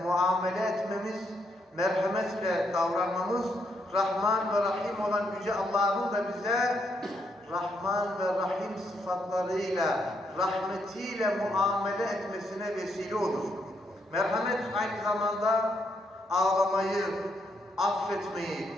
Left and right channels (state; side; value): normal; both; correlation 0.76